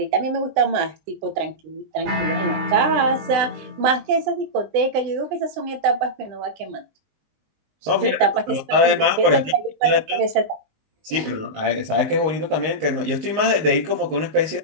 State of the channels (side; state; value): left; late; 19 ms